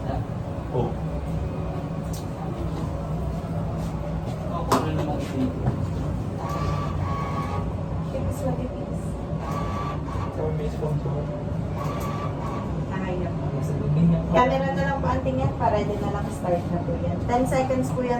Oh. Ako na naman ito. Tipis na tipis. Sa may sponsor. Nakaya po. Sa gabi niya. Camera na lang po ang tingin para din na lang start na po yan. 10 seconds po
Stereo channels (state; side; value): identical; both; correlation 1.00